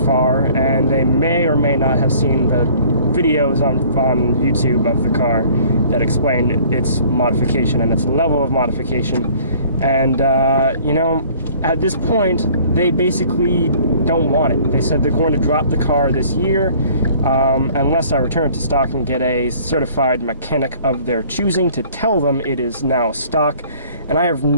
and they may or may not have seen the videos on YouTube of the car that explained its modification and its level of modification. And you know, at this point, they basically don't want it. They said they're going to drop the car this year unless I return it to stock and get a certified mechanic of their choosing to tell them it is now stock. And I have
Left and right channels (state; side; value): inverted; both; correlation -0.54